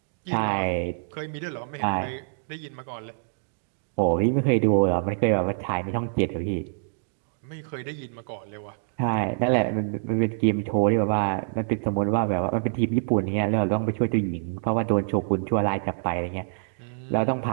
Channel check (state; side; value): silent; left; digital silence